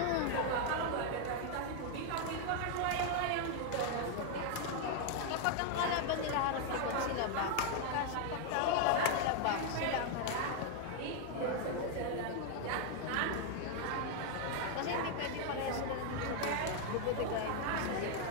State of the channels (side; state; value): both; different; correlation 0.00